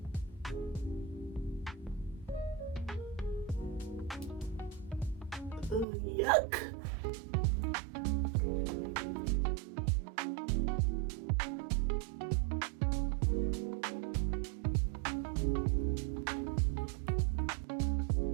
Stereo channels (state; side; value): drops out; left; at 5.9 s